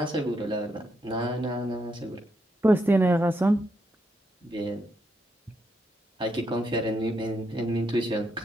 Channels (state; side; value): normal; both; correlation 0.80